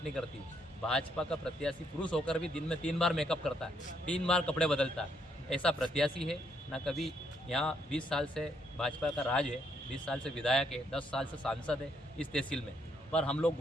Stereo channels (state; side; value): normal; both; correlation 0.73